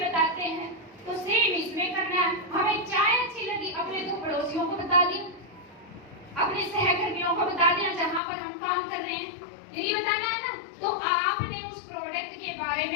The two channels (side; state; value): right; drops out; at 8.2 s